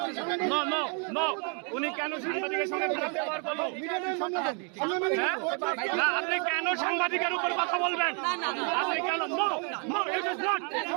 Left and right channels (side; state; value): left; quieter; 38.5 dB